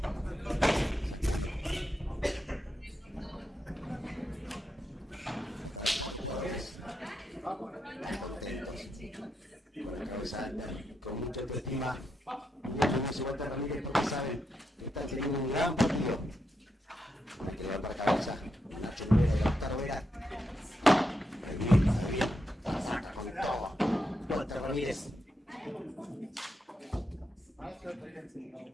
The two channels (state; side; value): normal; both; correlation 0.84